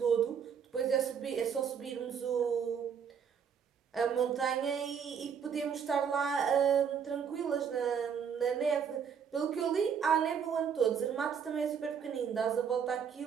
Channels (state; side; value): quieter; left; 7.2 dB